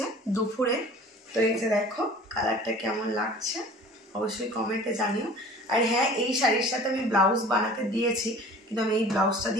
দুপুরে। তো এই যে দেখো কালারটা কেমন লাগছে অবশ্যই কমেন্টে জানিও। আর হ্যাঁ, এই শাড়ির সাথে আমি ব্লাউজ বানাতে দিয়েছি, কিন্তু আমি এই ব্লাউজটা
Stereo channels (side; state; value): both; normal; correlation 0.45